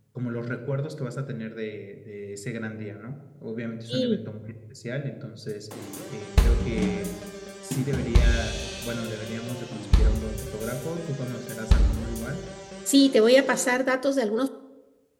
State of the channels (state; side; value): identical; both; correlation 1.00